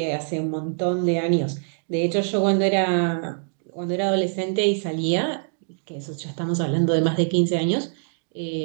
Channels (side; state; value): left; silent; 63 dB below the other